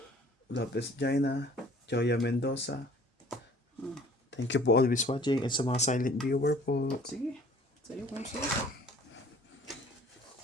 Lopez Jaina, Joya Mendoza. Thank you po always watching and sa mga silent viewer po. Sige. Sa'yo kung sa'yo.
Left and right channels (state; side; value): normal; both; correlation 0.52